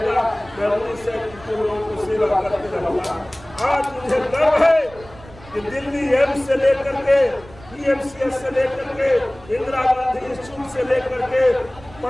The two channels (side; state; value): right; noise; rumble, 21 dB below the sound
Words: मैं रूनी साहब के लोगों को सेवा करते रहूँगा। आज मुझे गर्व है कि दिल्ली एम्स से लेकर के PMCS से लेकर के इंदिरा गांधी इंस्टीट्यूट से लेकर के